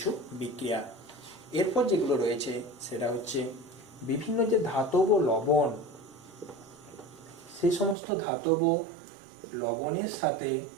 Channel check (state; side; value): drops out; left; at 8.0 s